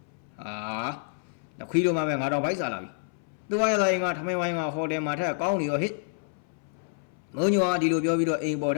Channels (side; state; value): right; silent; 59 dB below the other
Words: ခွေးတို့မှပဲငါတော့ဗိုက်စားလာပြီသူဝါရသားရင်ကထမင်းဝိုင်းကဟိုတယ်မှာထက်ကောင်းနေရောဟစ်မုံညိုကဒီလိုပြောပြီးတော့အိမ်ပေါ်ထ